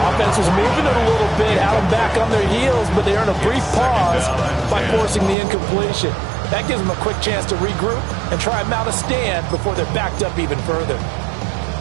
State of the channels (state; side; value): drops out; left; at 5.4 s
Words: Offense was moving it a little bit, had them back on their heels, but they earned a brief pause by forcing the incompletion. That gives them a quick chance to regroup and try and mount a stand before they're backed up even further.